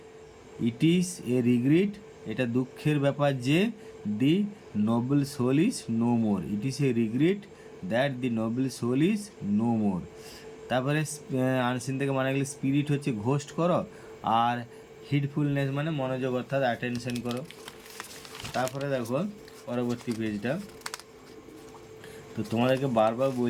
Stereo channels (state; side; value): identical; both; correlation 1.00